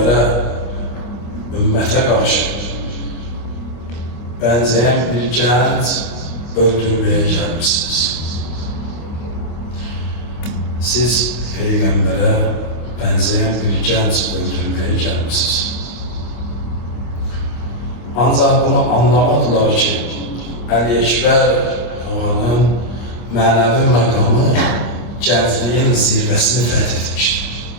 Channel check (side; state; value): right; late; 25 ms